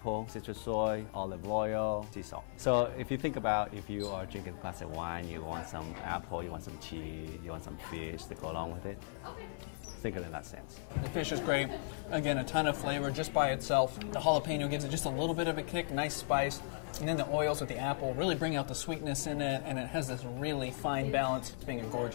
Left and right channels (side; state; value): right; silent; 53 dB below the other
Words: citrus soy, olive oil, sea salt. So if you think about if you are drinking a glass of wine, you want some apple, you want some cheese, you want some fish to go along with it. Think of it in that sense. The fish is great. Again, a ton of flavor just by itself. The jalapeno gives it just a little bit of a kick, nice spice. And then the oils with the apple really bring out the sweetness in it, and it has this really fine balance. It's being a